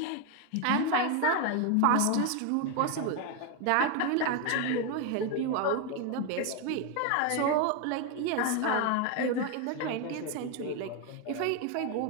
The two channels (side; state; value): both; different; correlation 0.01